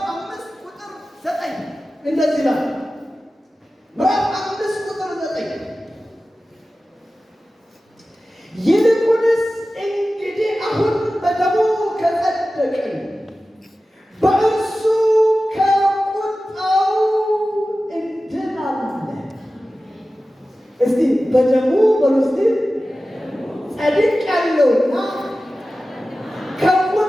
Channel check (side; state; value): both; normal; correlation 0.95